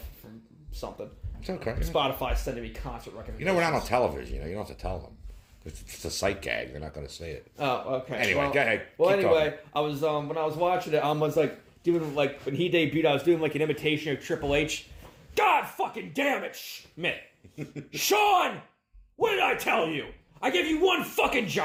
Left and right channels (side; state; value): both; identical; correlation 1.00